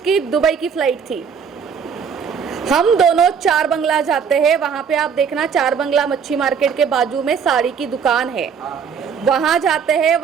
दुबई की फ़्लाइट थी। हम दोनों चार बंगला जाते हैं, वहाँ पे आप देखना, चार बंगला मच्छी मार्केट के बाजू में साड़ी की दुकान है, वहाँ जाते हैं,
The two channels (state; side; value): quieter; left; 6.8 dB